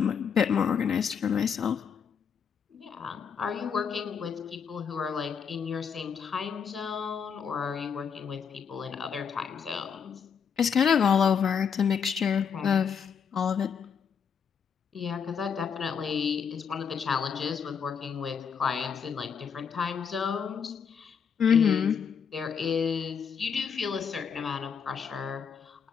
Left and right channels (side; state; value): right; quieter; 6.8 dB